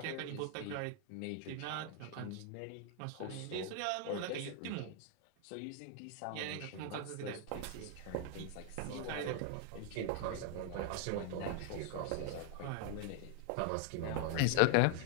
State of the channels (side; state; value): both; different; correlation 0.00